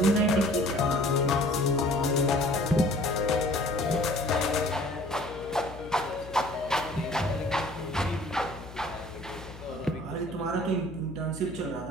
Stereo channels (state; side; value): noise; left; hum, 15 dB below the sound